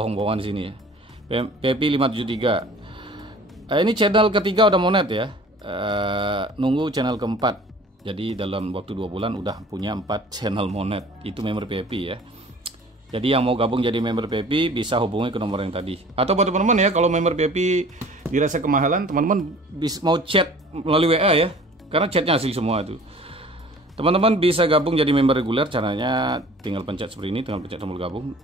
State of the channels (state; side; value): normal; both; correlation 0.47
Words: di sini ya. VIP 573. Ini channel ketiga udah monet ya. Nunggu channel keempat. Jadi dalam waktu 2 bulan udah punya 4 channel monet. Itu member VIP ya. Jadi yang mau gabung jadi member VIP bisa hubungi ke nomor yang tadi. Atau buat teman-teman ya, kalau member VIP dirasa kemahalan, teman-teman mau chat melalui WA ya. Karena chatnya asli semua itu. Teman-teman bisa gabung jadi member reguler, caranya tinggal pencet seperti ini, tinggal pencet tombol gabung.